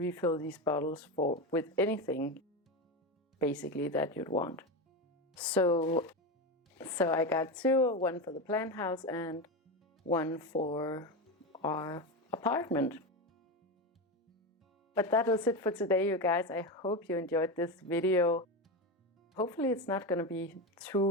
these bottles with anything basically that you'd want. So I got two, one for the plant house and one for our apartment. But that was it for today, you guys. I hope you enjoyed this video. Hopefully it's not going to be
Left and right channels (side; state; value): both; normal; correlation 0.17